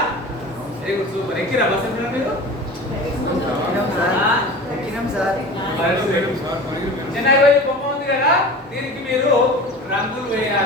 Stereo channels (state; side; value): normal; both; correlation 0.36